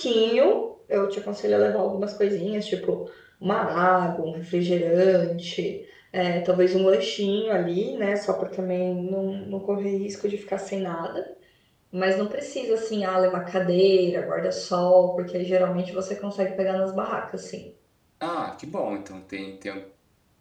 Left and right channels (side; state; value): both; identical; correlation 1.00